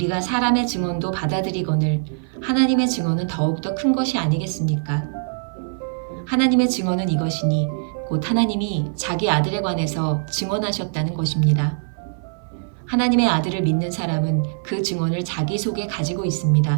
사람의 증언도 받아들이거늘 하나님의 증언은 더욱더 큰 것이 아니겠습니까? 하나님의 증언은 이것이니 곧 하나님이 자기 아들에 관해서 증언하셨다는 것입니다. 하나님의 아들을 믿는 사람은 그 증언을 자기 속에 가지고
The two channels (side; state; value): left; silent; 58 dB below the other